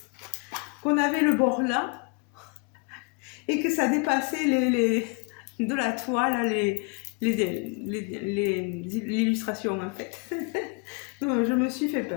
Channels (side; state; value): right; quieter; 30.4 dB